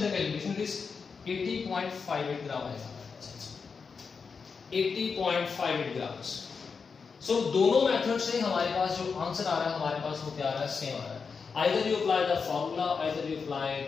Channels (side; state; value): right; quieter; 5.4 dB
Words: the calculation, it is 80.58 gram आएगा, 80.58 ग्राम्स। सो दोनों मेथड से हमारे पास जो आंसर आ रहा है हमारे पास वो क्या आ रहा है, सेम आ रहा है। Either you apply the formula, either you apply